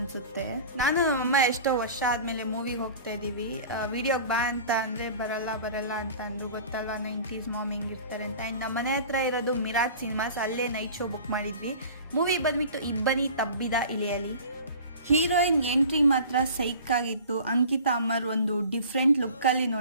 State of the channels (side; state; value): both; inverted; correlation -0.41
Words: ನಾನು ಅಮ್ಮ ಎಷ್ಟೋ ವರ್ಷ ಆದಮೇಲೆ ಮೂವಿಗೆ ಹೋಗ್ತಾ ಇದ್ದೀವಿ. ವಿಡಿಯೋಗೆ ಬಾ ಅಂತ ಅಂದರೆ ಬರಲ್ಲ ಅಂತ ಅಂದರು. ಗೊತ್ತಲ್ವ 90s ಮಾಮ್ ಹೆಂಗಿರ್ತಾರೆ ಅಂತ. ಆ್ಯಂಡ್ ನಮ್ಮ ಮನೆ ಹತ್ರ ಇರೋದು ಮಿರಾಜ್ ಸಿನಿಮಾಸ್, ಅಲ್ಲೇ ನೈಟ್ ಶೋ ಬುಕ್ ಮಾಡಿದ್ವಿ. ಮೂವಿ ಬಂದ್ಬಿಟ್ಟು ಇಬ್ಬನಿ ತಬ್ಬಿದ ಇಳಿಯಲಿ. ಹೀರೋಯಿನ್ ಎಂಟ್ರಿ ಮಾತ್ರ ಸೈಕ್ ಆಗಿತ್ತು. ಅಂಕಿತಾ ಅಮರ್ ಒಂದು ಡಿಫ್ರೆಂಟ್ ಲುಕ್ಕಲ್ಲಿ